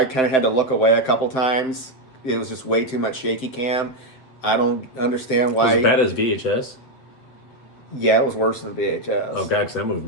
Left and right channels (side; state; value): right; late; 7.7 ms